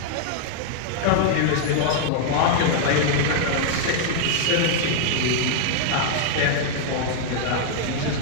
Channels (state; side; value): different; both; correlation -0.01